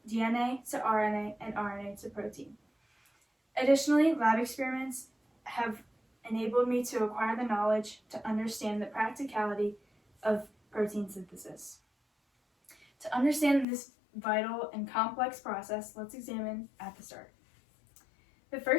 DNA to RNA and RNA to protein. Additionally, lab experiments have enabled me to acquire the knowledge to understand the practicality of protein synthesis. To understand this vital and complex process, let's examine at the start. The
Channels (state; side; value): drops out; right; at 13.7 s